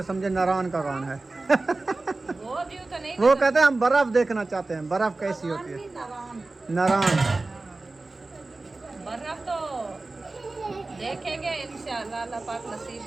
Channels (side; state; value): left; quieter; 3.3 dB